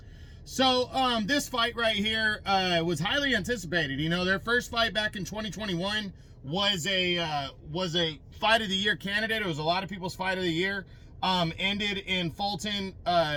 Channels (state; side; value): identical; both; correlation 1.00